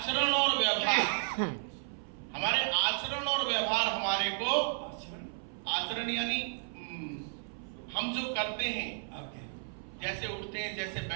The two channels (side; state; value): left; silent; 56 dB below the other